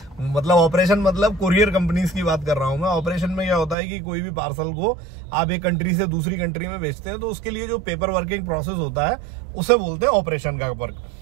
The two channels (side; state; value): left; drops out; at 3.8 s